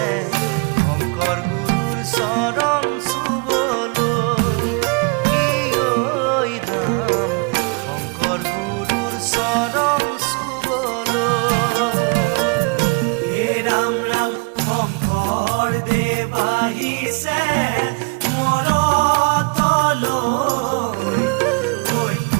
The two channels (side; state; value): left; quieter; 32.1 dB